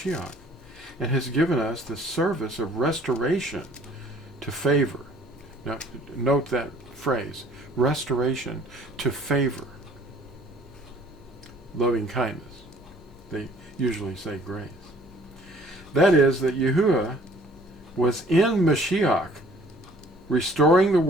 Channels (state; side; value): normal; both; correlation 0.55